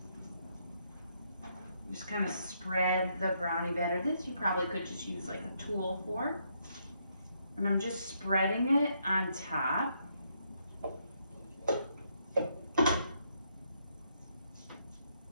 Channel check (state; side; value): inverted; both; correlation -0.74